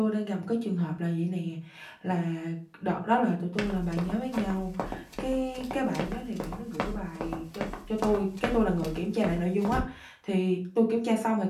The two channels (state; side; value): identical; both; correlation 1.00